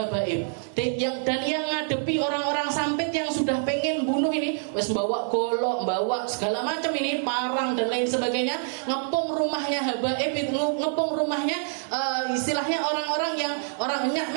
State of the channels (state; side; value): silent; left; digital silence